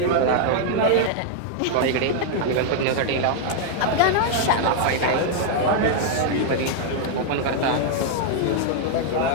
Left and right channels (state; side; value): different; both; correlation -0.01